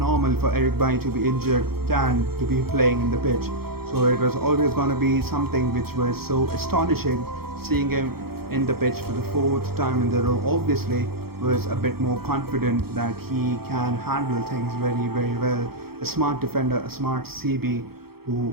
for Eric Bailly to be injured than to be playing in the pitch. So it was always going to be something which was so astonishing, seeing him in the pitch for the fourth time in the row, obviously was a bit more confident that he can handle things very, very well. A smart defender, a smart CB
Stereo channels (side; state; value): left; late; 0.95 ms